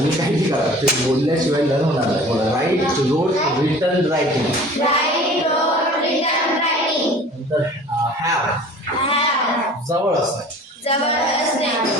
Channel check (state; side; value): normal; both; correlation 0.45